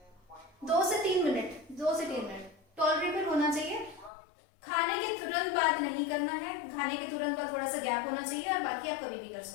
2 से 3 मिनट टॉलरेबल होना चाहिए। खाने के तुरंत बाद नहीं करना है, खाने के तुरंत बाद थोड़ा सा गैप होना चाहिए, और बाकी आप कभी भी कर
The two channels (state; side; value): drops out; right; at 4.1 s